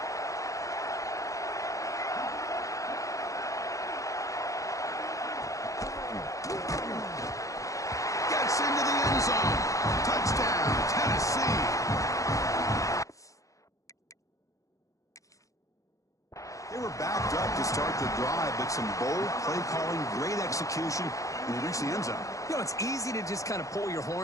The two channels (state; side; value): late; right; 0.16 ms